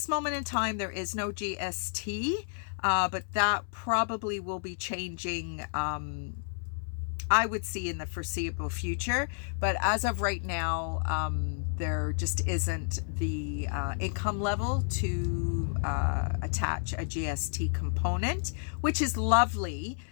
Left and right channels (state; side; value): silent; right; 57 dB below the other